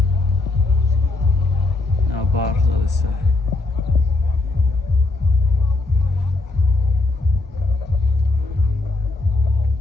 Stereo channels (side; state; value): right; quieter; 3.2 dB